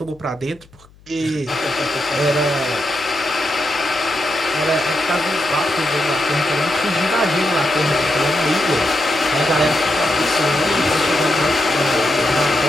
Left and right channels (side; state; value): left; noise; hum, 27 dB below the sound